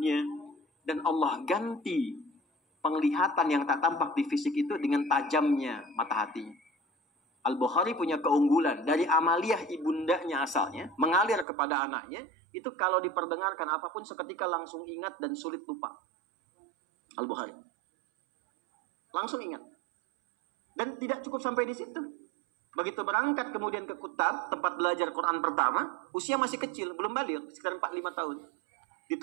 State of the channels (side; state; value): left; drops out; at 11.5 s